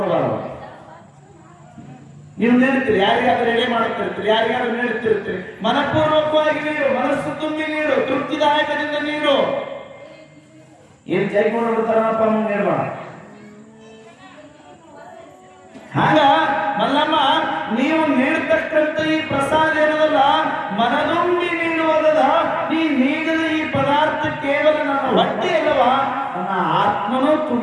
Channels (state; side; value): identical; both; correlation 1.00